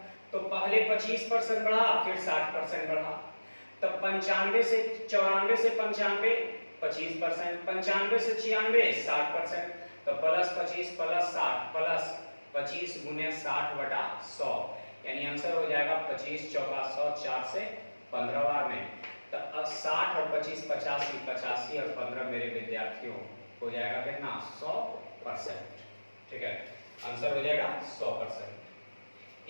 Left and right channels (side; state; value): both; inverted; correlation -1.00